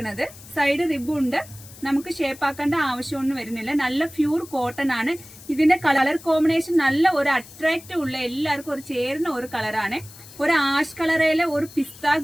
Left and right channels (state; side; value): noise; left; hiss, 19 dB below the sound